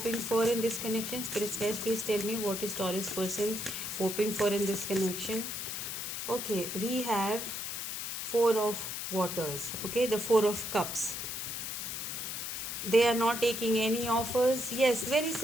for in this connection? Spirits, guys, please tell me what is Taurus person hoping for in this connection. Okay, we have four of waters. Okay, the four of cups. They are not taking any offers. Yes, very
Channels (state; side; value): noise; left; hiss, 4 dB below the sound